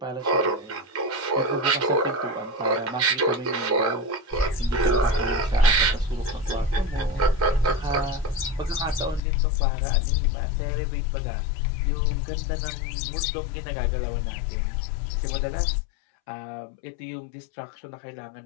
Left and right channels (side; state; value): right; drops out; at 9.2 s